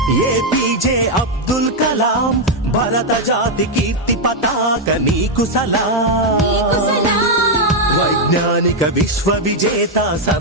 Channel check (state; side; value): normal; both; correlation 0.01